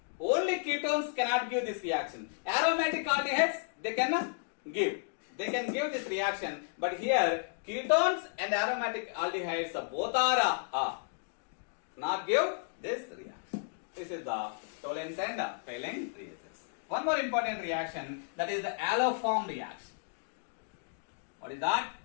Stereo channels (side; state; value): right; silent; digital silence